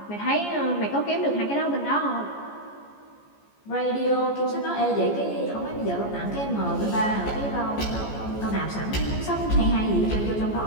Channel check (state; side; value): late; right; 14 ms